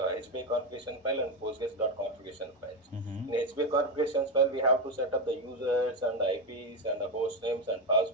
HBA configuration file and Postgres.configuration files. Mm-hmm. In HBA configuration file, we have to set up the users and the IPs and the host names and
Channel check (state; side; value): normal; both; correlation 0.11